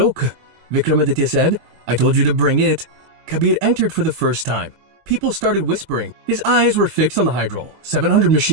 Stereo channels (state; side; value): late; left; 23 ms